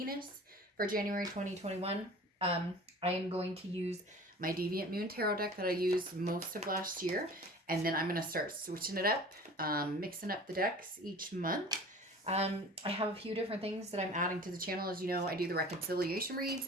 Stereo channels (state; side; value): normal; both; correlation 0.42